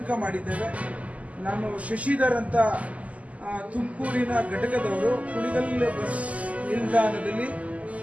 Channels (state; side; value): late; left; 0.071 ms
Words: ಮಾಡಿದ್ದೇವೆ. ನಾನು ಶಶಿಧರ್ ಅಂತ ತುಮಕೂರಿನ ಘಟಕದವರು ಕುಣಿಗಲ್ ಬಸ್ ನಿಲ್ದಾಣದಲ್ಲಿ